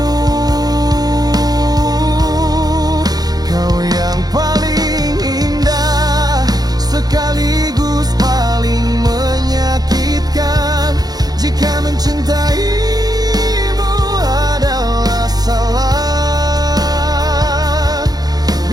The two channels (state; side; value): late; left; 0.19 ms